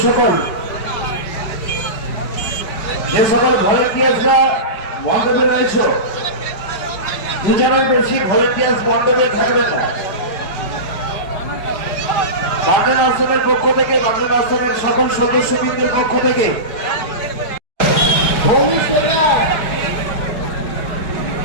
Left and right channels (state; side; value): late; right; 5.0 ms